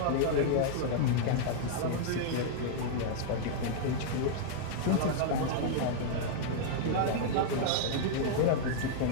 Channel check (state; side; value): different; both; correlation -0.01